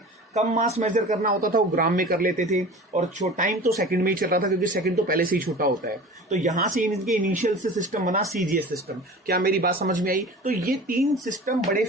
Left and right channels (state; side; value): normal; both; correlation 0.38